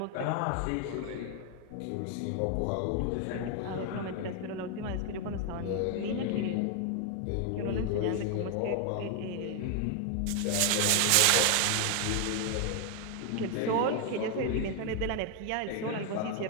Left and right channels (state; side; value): different; both; correlation 0.00